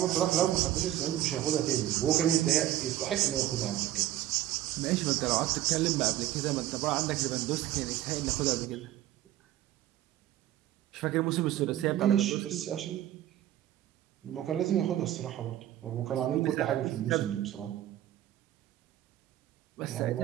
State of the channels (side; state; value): left; quieter; 13.3 dB